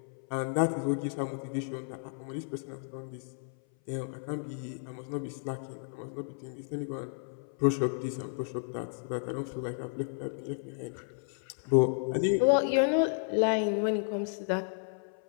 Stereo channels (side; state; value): right; silent; 56 dB below the other